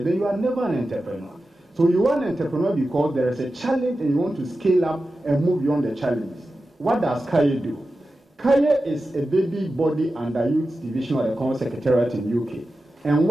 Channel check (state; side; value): normal; both; correlation 0.93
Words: then you are never an entrepreneur. So you are an entrepreneur because there is a challenge and you want to scale up and move beyond the challenges. What does Kaye do? Kaye is a baby body under Youth Division of the Economic Secretariat in UK. And